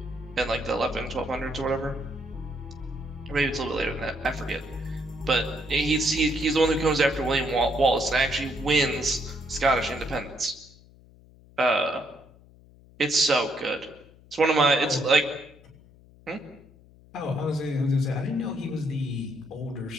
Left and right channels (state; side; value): noise; left; hum, 25 dB below the sound